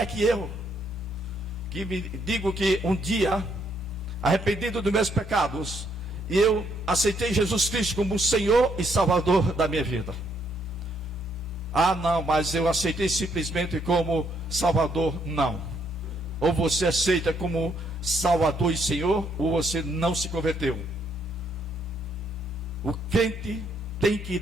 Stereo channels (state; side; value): normal; both; correlation 0.72